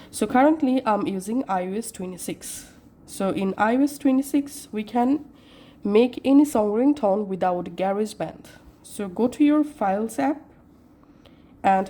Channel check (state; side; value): identical; both; correlation 1.00